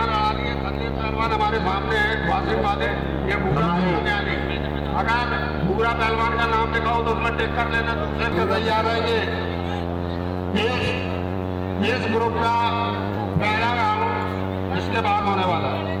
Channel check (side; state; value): both; identical; correlation 1.00